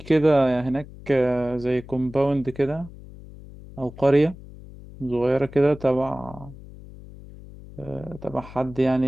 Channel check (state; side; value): noise; left; hum, 17 dB below the sound